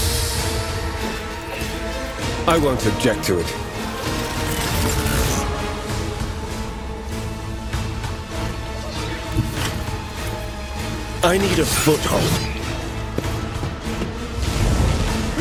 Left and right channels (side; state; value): both; identical; correlation 1.00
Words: I won't object to it. I need a foothold.